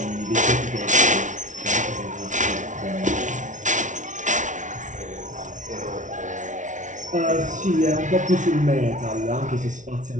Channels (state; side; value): late; left; 0.37 ms